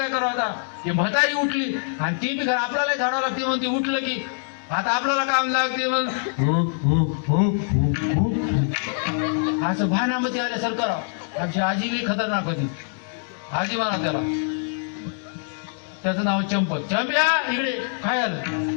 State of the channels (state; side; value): silent; right; 63 dB below the other